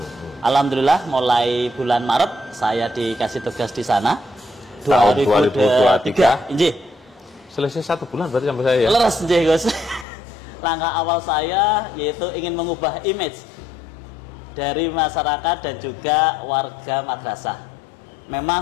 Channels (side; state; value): right; drops out; at 10.1 s